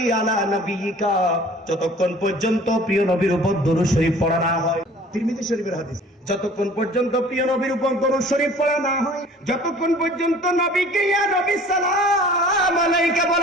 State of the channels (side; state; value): both; normal; correlation 0.48